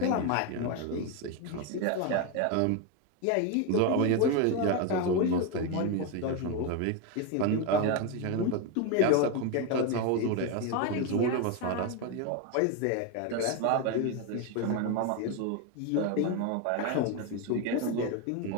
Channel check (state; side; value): different; both; correlation 0.02